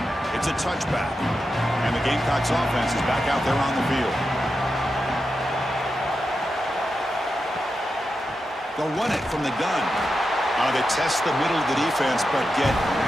it's a touchback. And the Gamecocks offense is back out there on the field. They'll run it from the gun. They test the middle of the defense, but get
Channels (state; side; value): normal; both; correlation 0.89